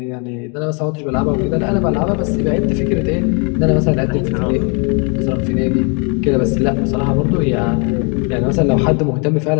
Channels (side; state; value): right; quieter; 35.1 dB